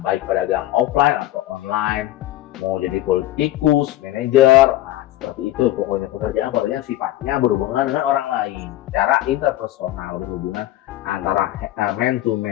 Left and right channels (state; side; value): quieter; right; 14.9 dB